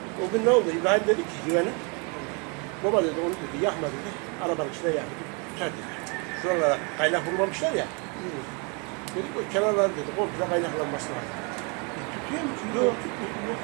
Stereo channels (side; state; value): left; quieter; 33.7 dB